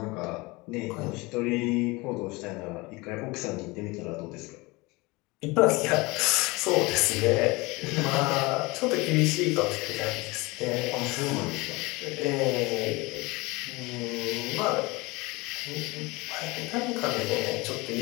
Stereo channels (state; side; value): quieter; right; 23.9 dB